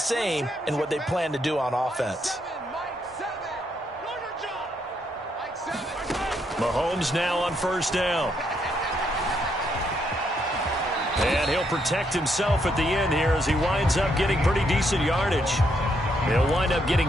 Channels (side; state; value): both; normal; correlation 0.75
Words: in what they plan to do on offense. Mahomes now on 1st down. And he'll protect himself at the end here as he winds up getting pretty decent yardage. He'll wind up